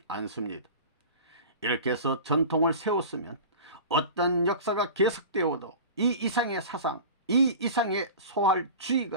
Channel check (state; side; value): inverted; both; correlation -0.35